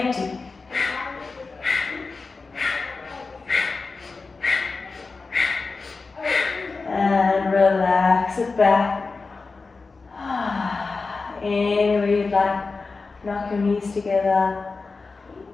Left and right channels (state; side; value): quieter; right; 4.1 dB